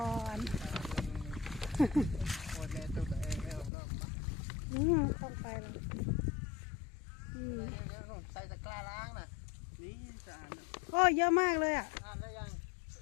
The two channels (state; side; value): drops out; right; at 3.7 s